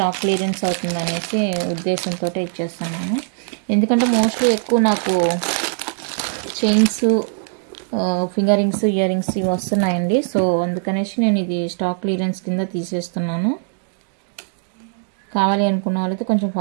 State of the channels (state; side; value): silent; left; digital silence